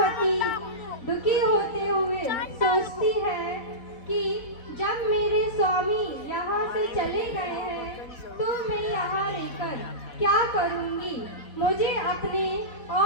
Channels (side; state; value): right; late; 4.0 ms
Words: दुखी होते हुए सोचती है कि जब मेरे स्वामी यहाँ से चले गए हैं तो मैं यहाँ रहकर क्या करूँगी। मुझे अपने